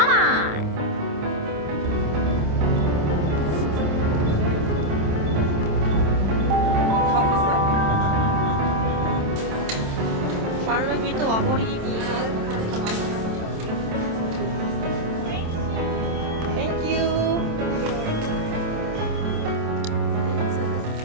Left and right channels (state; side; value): late; left; 27 ms